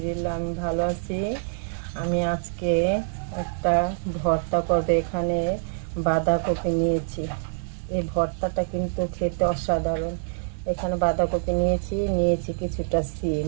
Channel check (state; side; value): silent; left; digital silence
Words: আমি ভালো আছি। আমি আজকে একটা ভর্তা করব। এখানে বাঁধাকপি নিয়েছি। এই ভর্তাটা কিন্তু খেতে অসাধারণ। এখানে বাঁধাকপি নিয়েছি কিছুটা সিম।